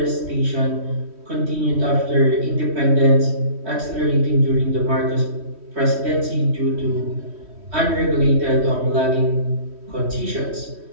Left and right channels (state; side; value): late; left; 3.1 ms